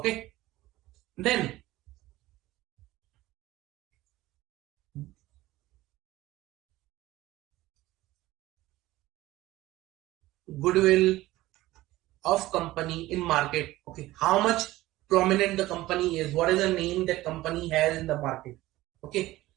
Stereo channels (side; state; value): left; quieter; 17.2 dB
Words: then goodwill of company in market, okay, how much prominent the company is, what is the name that company has in the market, okay.